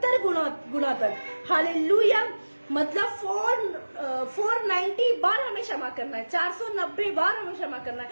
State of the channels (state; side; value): inverted; both; correlation -1.00